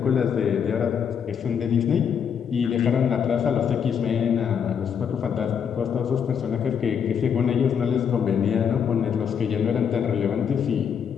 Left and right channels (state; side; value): quieter; right; 7.5 dB